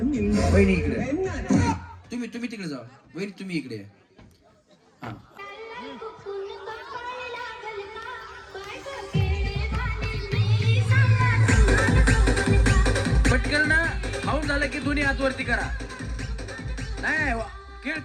वहिनी इकडे तुम्ही तिकडे जावा वहिनी तुम्ही इकडे या. हा पटकन ना खाऊन झालं की दोन्ही हात वरती करा नाही केळ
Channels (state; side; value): identical; both; correlation 1.00